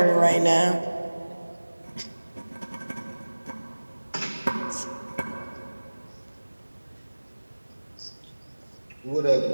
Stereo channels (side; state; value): both; inverted; correlation -1.00